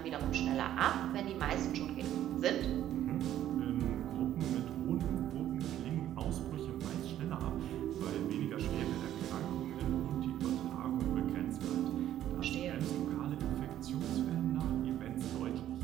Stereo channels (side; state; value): left; quieter; 11.9 dB